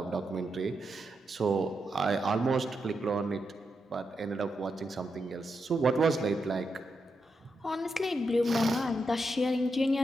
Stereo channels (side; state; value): both; normal; correlation 0.84